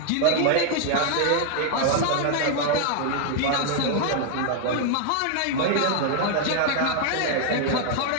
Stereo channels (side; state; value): both; different; correlation 0.00